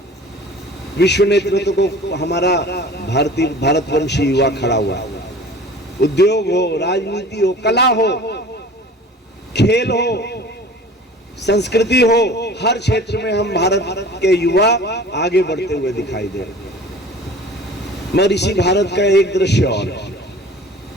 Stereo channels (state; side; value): normal; both; correlation 0.43